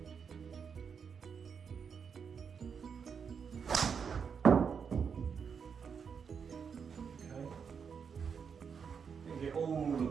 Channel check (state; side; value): quieter; left; 6.5 dB